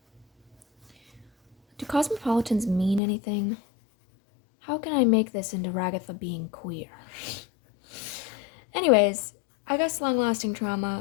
Do cosmopolitans mean anything? How can I make this into Ragatha being queer? Anyways, I guess long-lasting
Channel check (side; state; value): right; drops out; at 3.0 s